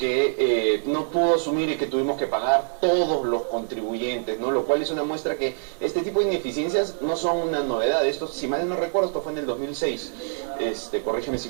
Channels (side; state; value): left; silent; digital silence